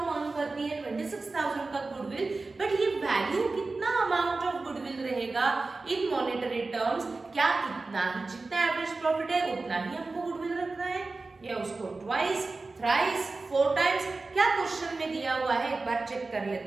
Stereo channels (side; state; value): left; quieter; 3.6 dB